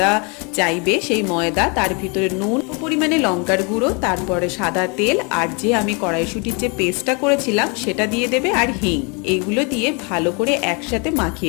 চাইবে সেই ময়দা, তার ভিতরে নুন, পরিমাণে লঙ্কার গুঁড়ো, তারপরে সাদা তেল, আর যে আমি কড়াইশুঁটির যে পেস্টটা করেছিলাম সেটা দিয়ে দেবে, আর হিং। এইগুলো দিয়ে ভালো করে একসাথে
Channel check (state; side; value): quieter; right; 32.4 dB